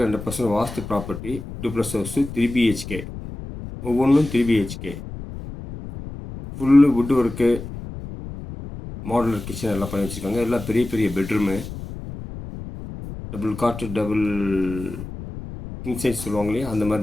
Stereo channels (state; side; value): noise; left; rumble, 10 dB below the sound